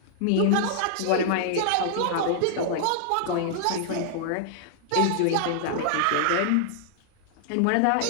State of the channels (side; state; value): both; different; correlation -0.01